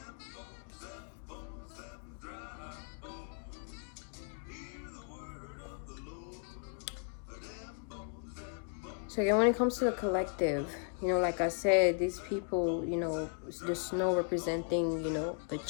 yeah, when it comes to the collective, like I said, these people, the snow representing, a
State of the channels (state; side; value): silent; right; 53 dB below the other